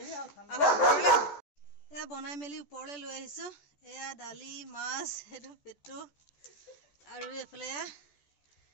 এয়া বনাই মেলি ওপৰলৈ লৈ আহিছোঁ। এয়া দালি, মাছ, সেইটো পেটু, আৰু এইফালে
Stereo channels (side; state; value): right; late; 14 ms